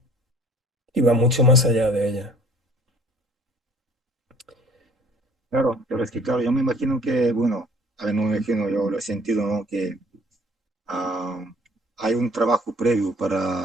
Y va mucho más allá de ella. Claro, pero es que, claro, yo me imagino que, bueno, a ver, no me imagino, yo lo he sentido, ¿no? Que ah, hay un trabajo previo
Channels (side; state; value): both; normal; correlation 0.53